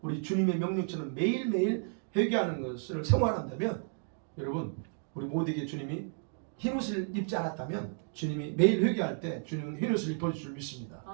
우리 주님의 명령처럼 매일매일 회개하는 것을 생활한다면 여러분 우리 모두에게 주님이 흰옷을 입지 않았다면 주님이 매일 회개할 때 주님은 흰옷을 입어줄 줄 믿습니다.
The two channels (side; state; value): left; silent; 56 dB below the other